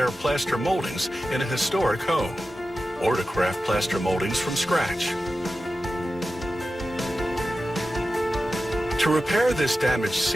plaster moldings in a historic home, or to craft plaster moldings from scratch. To repair this damaged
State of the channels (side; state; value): both; normal; correlation 0.93